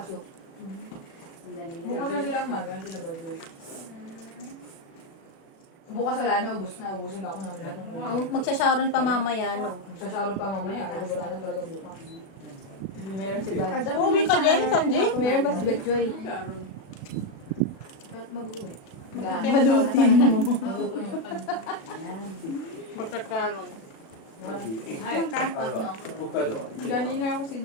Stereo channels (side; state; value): right; late; 36 ms